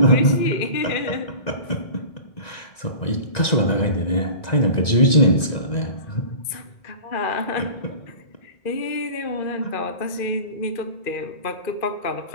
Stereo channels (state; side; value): late; right; 1.9 ms